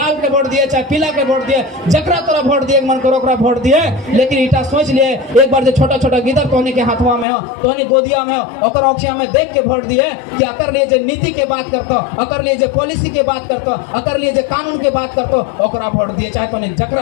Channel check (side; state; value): right; drops out; at 7.2 s